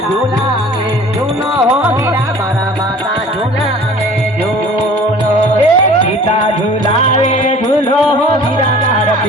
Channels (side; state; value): both; normal; correlation 0.47